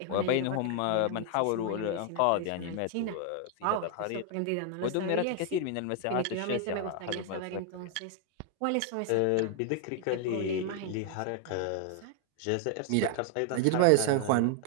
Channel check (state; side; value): different; both; correlation 0.00